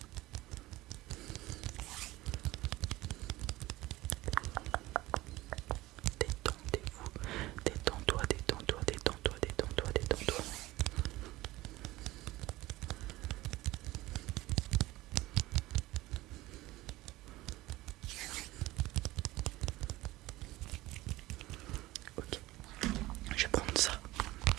Détendez-vous, détends-toi, détends-toi, détends-toi, détends-toi, détends-toi. Ok, je vais prendre ça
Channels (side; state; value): left; quieter; 18.3 dB